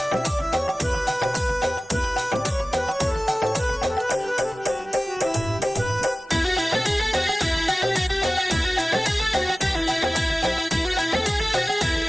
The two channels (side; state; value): both; normal; correlation 0.96